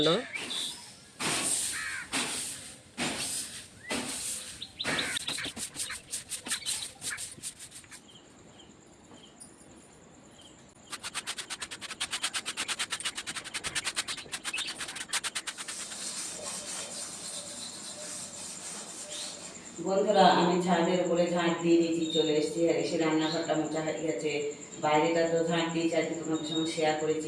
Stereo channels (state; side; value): identical; both; correlation 1.00